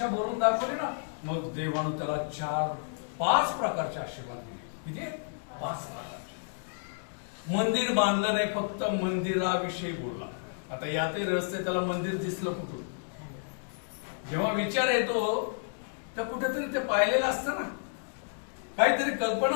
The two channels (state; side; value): silent; right; digital silence